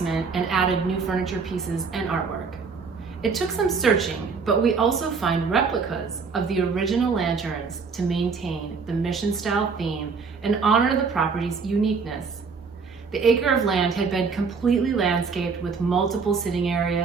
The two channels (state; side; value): quieter; left; 5.1 dB